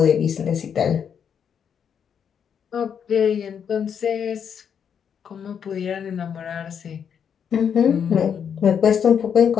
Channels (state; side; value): quieter; right; 7.7 dB